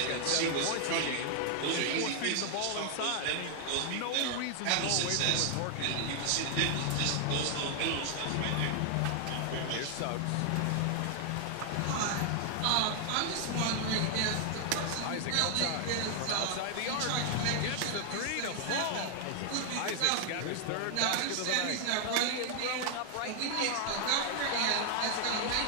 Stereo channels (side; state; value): both; different; correlation 0.00